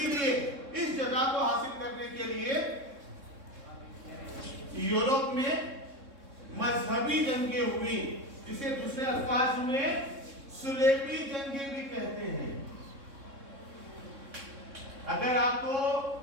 इस जगह को हासिल करने के लिए यूरोप में मजहबी जंगें हुई, जिसे दूसरे अल्फाज में सुलेबी जंगें भी कहते हैं। अगर आपको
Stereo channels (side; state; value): left; late; 3.6 ms